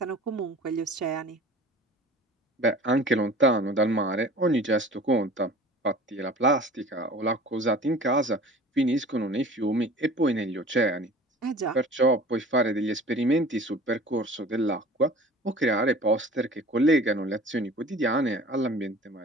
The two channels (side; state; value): both; normal; correlation 0.44